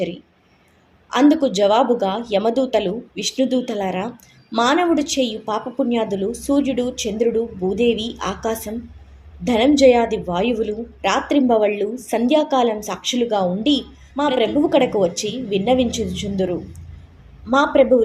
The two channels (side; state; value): both; identical; correlation 1.00